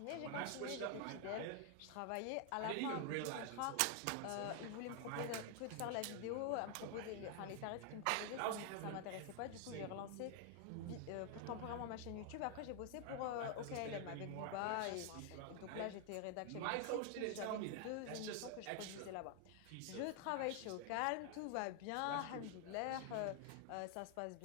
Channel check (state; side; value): different; both; correlation 0.00